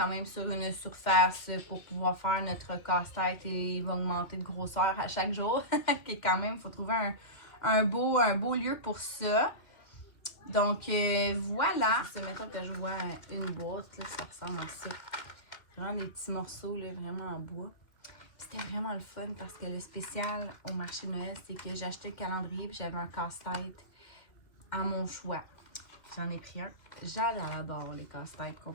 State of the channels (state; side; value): late; right; 2.2 ms